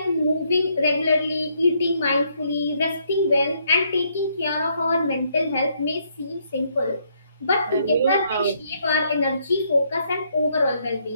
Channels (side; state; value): both; inverted; correlation -0.72